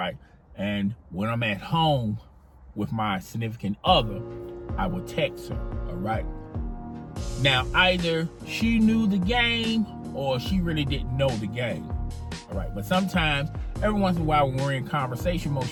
And when I'm at home with my significant other, I would text her, all right? Now, either she knew the game or she really didn't know the game, all right? But sometimes, every once in a while when we're in conversation mode,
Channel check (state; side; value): identical; both; correlation 1.00